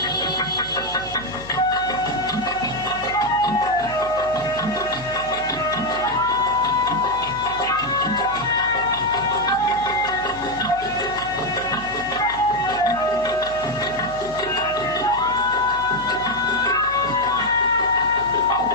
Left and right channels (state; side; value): noise; right; hum, 16 dB below the sound